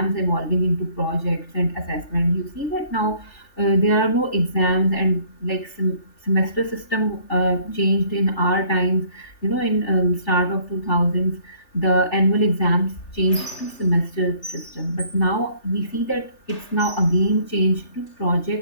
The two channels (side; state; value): right; late; 3.4 ms